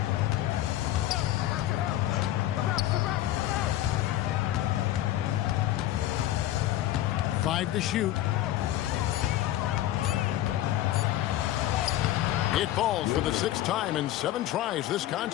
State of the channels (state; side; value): quieter; right; 13.8 dB